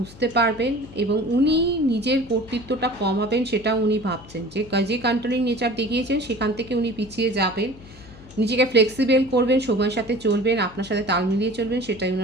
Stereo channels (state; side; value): noise; left; hum, 20 dB below the sound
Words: পারবেন এবং উনি নিজের কর্তৃত্বটা কমাবেন, সেটা উনি ভাবছেন। যে কন্ট্রোলিং নেচার দেখিয়েছেন সেখান থেকে উনি পিছিয়ে যাবেন, নিজেকে ফ্লেক্সিবল করবেন, সময়ের সাথে চলবেন, আপনার সাথে তাল মিলিয়ে চলবেন, সেটাই